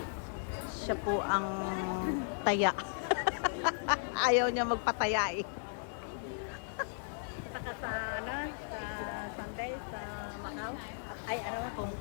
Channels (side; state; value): right; silent; digital silence